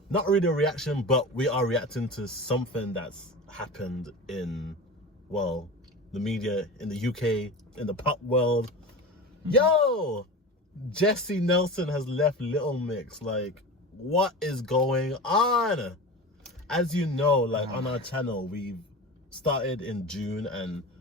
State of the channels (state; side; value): normal; both; correlation 0.30